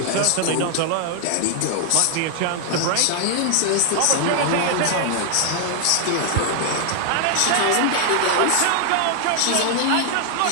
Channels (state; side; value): different; both; correlation 0.00